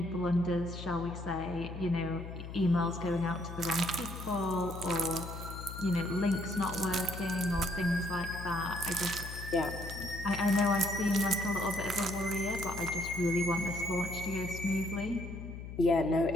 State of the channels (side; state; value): left; noise; hum, 10 dB below the sound